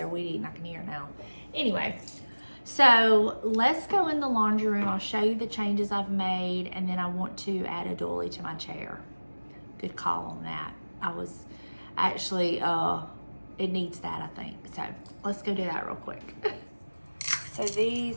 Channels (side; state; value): both; inverted; correlation -1.00